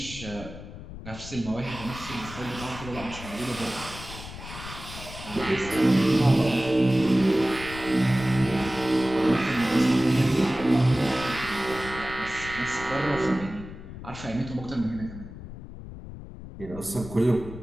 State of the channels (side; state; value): left; noise; rumble, 12 dB below the sound